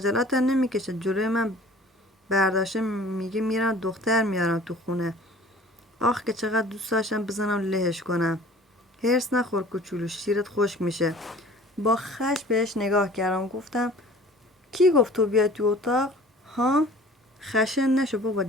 نمیکشه جلوی من برداشته میگه میرم دختر میارم تو خونه. آخ که چقدر دوست داشتم بزنم لهش کنم. هرس نخور کوچولو، شیرت خشک میشه. با خش بهش نگاه کردم. گفتم کی گفت تو بیای تو اتاق؟ ها؟ خشن نشو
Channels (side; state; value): both; normal; correlation 0.48